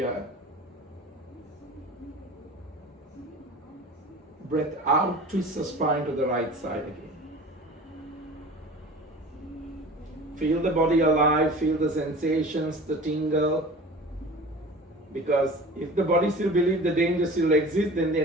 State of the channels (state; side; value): normal; both; correlation 0.39